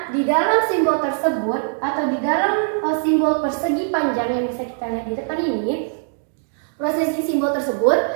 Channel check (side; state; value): left; silent; digital silence